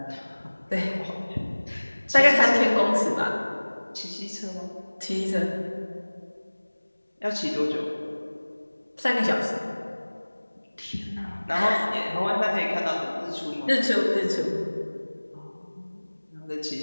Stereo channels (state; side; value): inverted; both; correlation -1.00